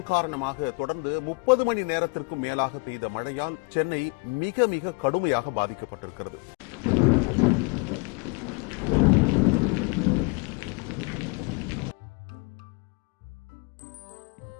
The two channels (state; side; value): quieter; right; 31.7 dB